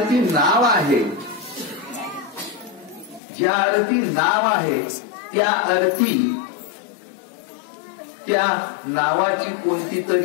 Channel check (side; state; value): right; drops out; at 3.2 s